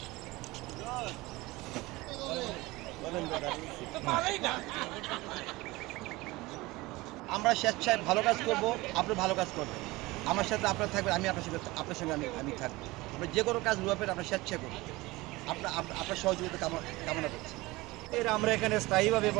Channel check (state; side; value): quieter; left; 21.0 dB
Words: আমরা স্বেচ্ছায় ভালো কাজ করব, আপনি ভালো কাজ করবেন, আমার সাথে আপনার থাকবেন, আমি আপনার সঙ্গে আমি থাকবো। আমরা যে কোনো কাজ রূপের আমরা স্বেচ্ছায় করব, আপনার সহযোগিতা কামনা করছি। আমরা এখানে স্থায়ীভাবে